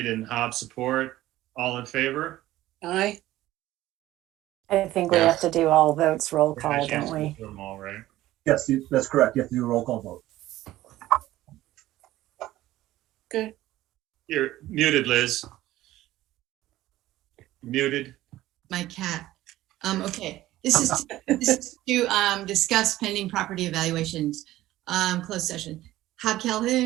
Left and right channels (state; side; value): quieter; left; 15.5 dB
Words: and Hobb support. All in favor? Aye. I think we have to do all votes roll call, don't we? Do them all, right? Yes, that's correct. You have to do a roll call vote. Good. You're muted, Liz. Muted. My cat. Okay. This is to discuss pending property evaluations. Closed session. Hobb